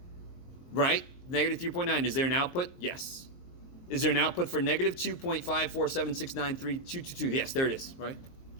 Right? Negative 3.9. Is there an output? Yes. Is there an output for negative 2.547693222? Yes, there it is, right?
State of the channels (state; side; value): late; right; 23 ms